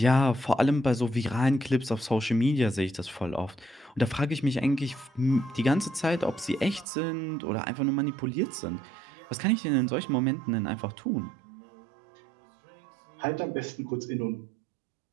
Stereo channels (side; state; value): left; drops out; at 6.9 s